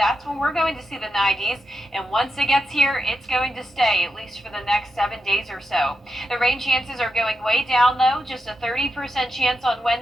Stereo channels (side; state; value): both; normal; correlation 0.86